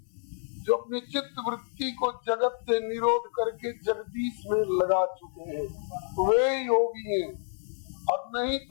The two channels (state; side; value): silent; right; 59 dB below the other